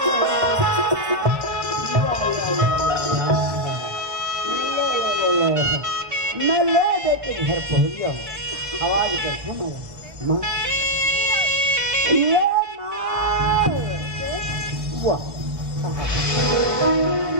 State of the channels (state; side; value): late; left; 1.3 ms